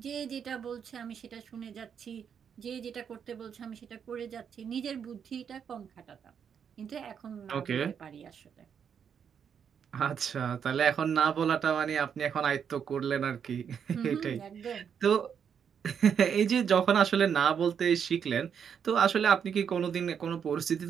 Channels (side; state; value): left; quieter; 7.6 dB